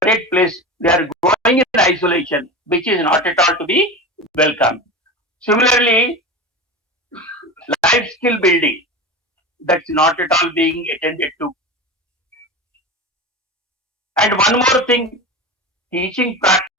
place. They are growing in isolation, which is not at all to be welcome. Similarly, life skill building, that's not at all being attended to. And one more thing, teaching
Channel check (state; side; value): normal; both; correlation 0.27